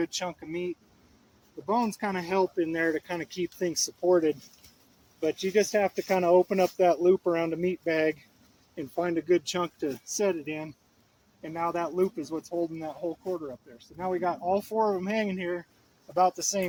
chunk of meat. The bones kind of help in there to kind of keep things supported. But you just have to kind of open up that loop around a meat bag and find a good chunk to set it in. And now that loop is what's holding that whole quarter up there. So now we got all four of them hanging here about the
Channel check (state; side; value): identical; both; correlation 1.00